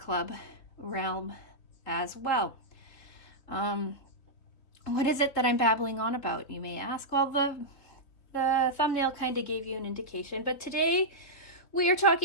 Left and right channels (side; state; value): right; late; 3.6 ms